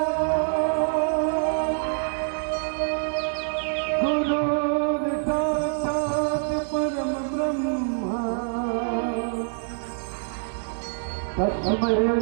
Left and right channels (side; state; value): left; silent; 61 dB below the other